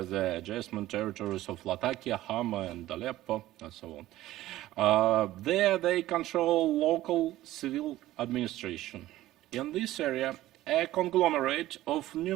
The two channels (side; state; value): left; quieter; 15.4 dB